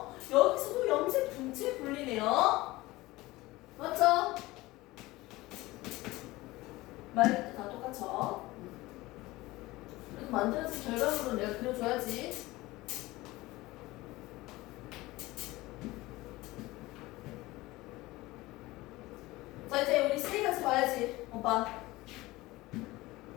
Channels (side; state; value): right; quieter; 19.6 dB